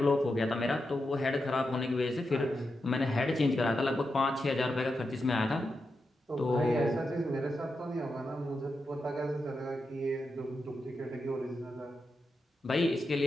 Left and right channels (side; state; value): both; normal; correlation 0.87